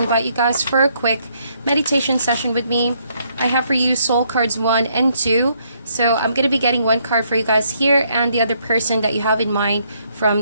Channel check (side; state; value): both; inverted; correlation -0.71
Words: you guys for a quick meditation session with me. I have for you soul cards 1 and 2. So I'm going to be getting one card for you guys here and the other person that you have in mind